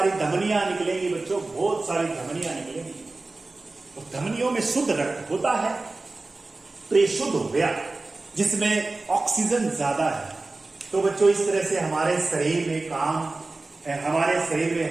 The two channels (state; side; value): quieter; left; 3.3 dB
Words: धमनियां निकलेंगी बच्चों, बहुत सारी धमनियां निकलेंगी। तो धमनियों में शुद्ध रक्त होता है, तो ये शुद्ध हो गया, जिसमें ऑक्सीजन ज्यादा है। तो बच्चों इस तरह से हमारे शरीर में हमारे शरीर